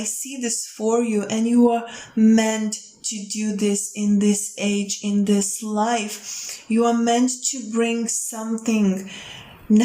see this for you, and you are meant to do this in this age, in this life. You are meant to bring something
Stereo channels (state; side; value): identical; both; correlation 1.00